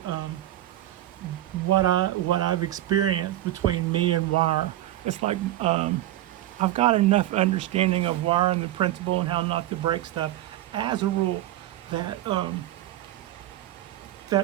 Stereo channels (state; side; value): quieter; left; 14.3 dB